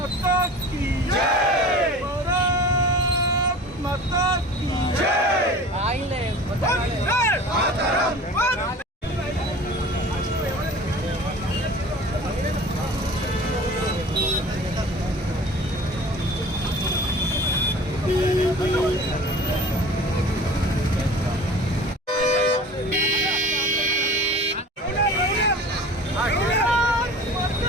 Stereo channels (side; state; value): both; normal; correlation 0.41